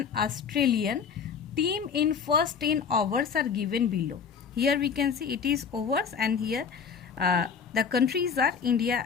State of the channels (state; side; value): quieter; right; 6.4 dB